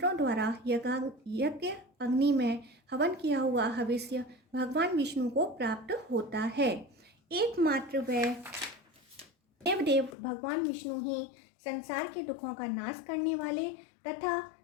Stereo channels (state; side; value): drops out; right; at 10.2 s